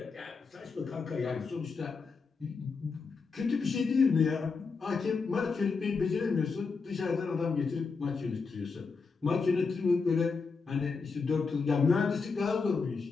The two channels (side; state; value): right; quieter; 4.8 dB